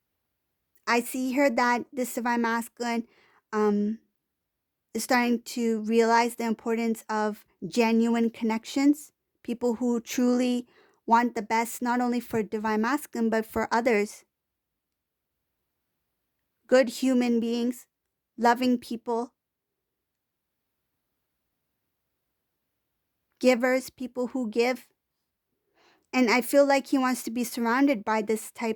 I see here that this divine masculine is starting to realize the importance of genuine connections, people who truly want the best, not only for divine masculine, but for others. Good human beings, loving people, givers, people who give. And I feel like he wants to be surrounded by this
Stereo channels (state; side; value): identical; both; correlation 1.00